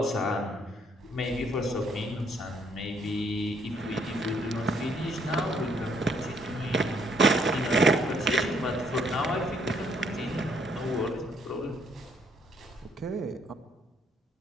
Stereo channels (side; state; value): both; normal; correlation 0.68